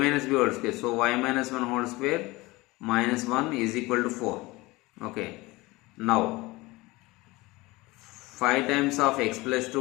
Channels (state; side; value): quieter; right; 21.7 dB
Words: b whole square. So y minus 1 whole square minus 1 is equal to 4. Okay. Now 5 times of x plus